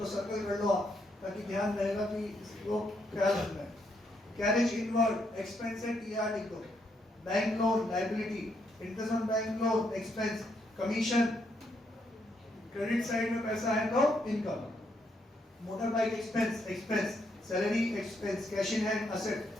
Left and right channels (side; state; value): both; normal; correlation 0.76